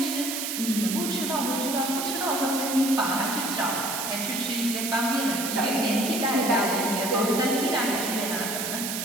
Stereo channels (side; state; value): right; noise; hiss, 3 dB below the sound